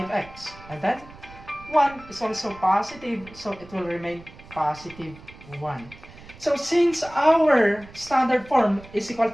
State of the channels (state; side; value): noise; right; rumble, 20 dB below the sound